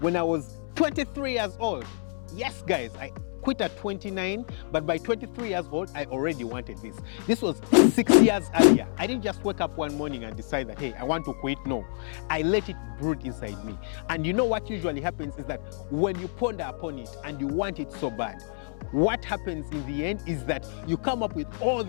I was 23 years old. Yes, guys, I quit at 29, but by 23 years old, I already wanted this. This was 6 years earlier. I didn't just wake up one morning and decide that, hey, I want to quit. No, I let it brood inside me. And you know what usually happens is that when you ponder upon it and you want it so bad, what happens in the end is that you come up with all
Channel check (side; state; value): right; silent; 59 dB below the other